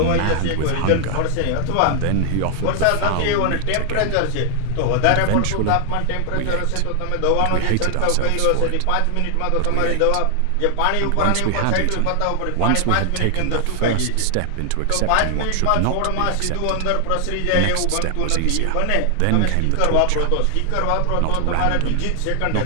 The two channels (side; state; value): both; different; correlation 0.00